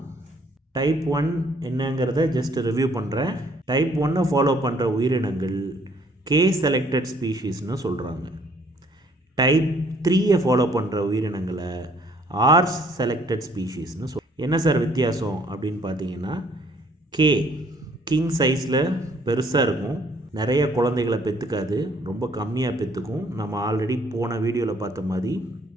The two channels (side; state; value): both; normal; correlation 0.62